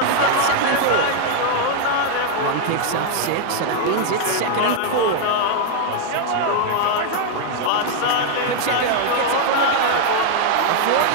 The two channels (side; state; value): both; different; correlation 0.00